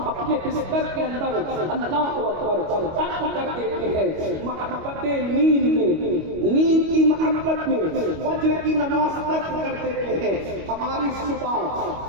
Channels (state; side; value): late; left; 25 ms